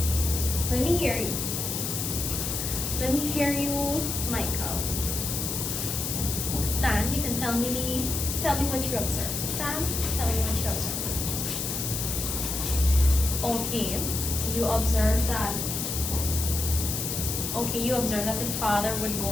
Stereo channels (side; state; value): left; noise; hiss, 2 dB below the sound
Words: Let me hear you. Let me hear you, Michael. Stan, you can tell me what you observed. Stan, tell me what you observed. Okay, you observed that. Okay, you observed that the father would